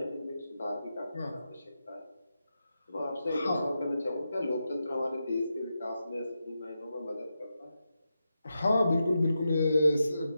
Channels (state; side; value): inverted; both; correlation -0.87